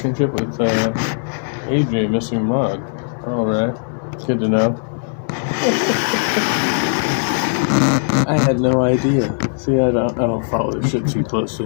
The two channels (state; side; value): silent; right; digital silence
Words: with AJ Missing Mod. All right, good to know. I had no idea. See, I don't follow this shit too